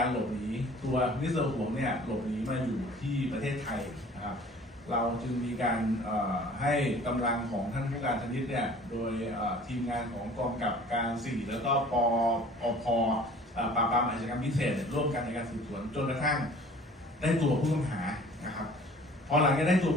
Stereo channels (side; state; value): both; normal; correlation 0.49